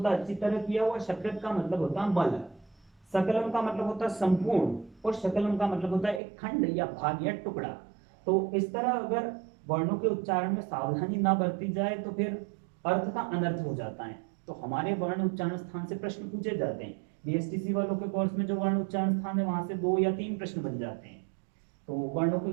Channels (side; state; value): left; drops out; at 6.2 s